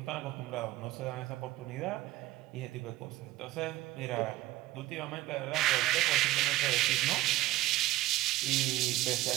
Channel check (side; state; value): left; quieter; 16.5 dB